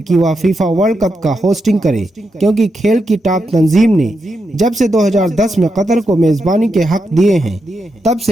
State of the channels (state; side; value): normal; both; correlation 0.85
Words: وہ فیفا ورلڈ کپ کا ہوسٹنگ کرے، کیونکہ کھیل کی ٹاپ تنظیم نے جب سے 2010 میں قطر کو میزبانی کے حق دیے ہیں، تب